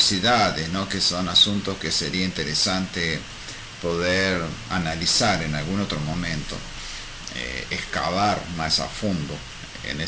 ¿no?, que são assuntos que seria interessante poder analisar em algum outro momento. Excavar más a fondo en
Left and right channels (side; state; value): both; identical; correlation 1.00